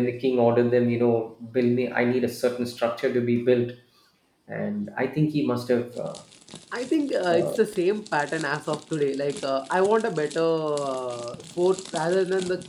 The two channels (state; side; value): identical; both; correlation 1.00